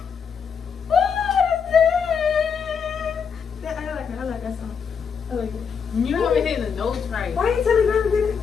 like that song. I like it. You haven't hit the notes right. Why are you telling her to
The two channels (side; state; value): right; quieter; 6.5 dB